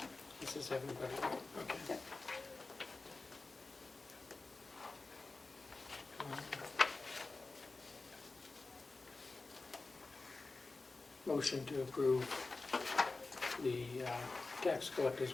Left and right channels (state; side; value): quieter; right; 3.6 dB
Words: This is everybody, right? Okay. Yep. Motion to approve the tax